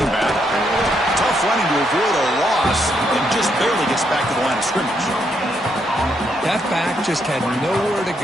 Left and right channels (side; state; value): both; normal; correlation 0.76